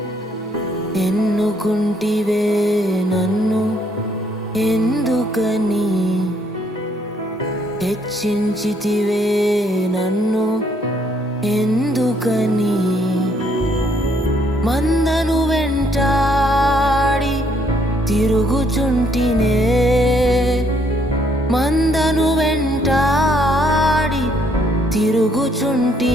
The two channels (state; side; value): normal; both; correlation 0.68